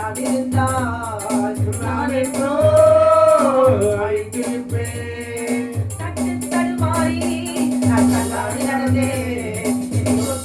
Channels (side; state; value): both; identical; correlation 1.00